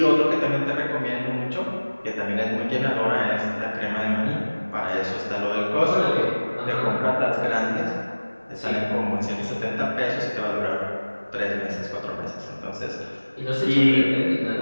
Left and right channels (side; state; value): both; inverted; correlation -1.00